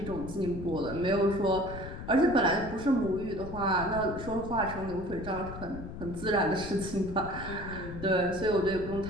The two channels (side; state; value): left; noise; rumble, 10 dB below the sound